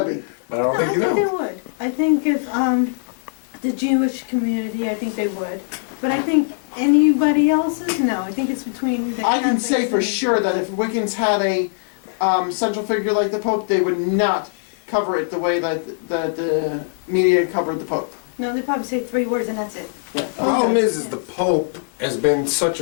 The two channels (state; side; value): silent; right; digital silence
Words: But I don't think you know. I think they would. I think if the Jewish community, I think they would. But I think anybody else's, no. I think it's between the I can say Catholics for and- sure that if Wiccans had a central figure like the Pope, they would not cover it the way that the media covered the Pope. No, they probably say 3 words and that's it. Yeah. The problem is the Pope has been such